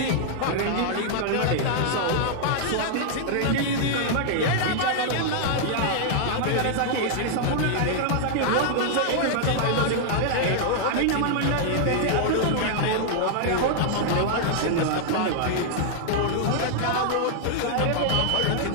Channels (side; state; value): both; different; correlation -0.01